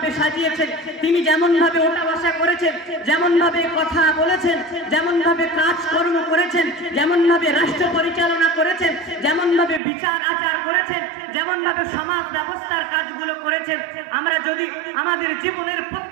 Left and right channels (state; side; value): drops out; left; at 9.8 s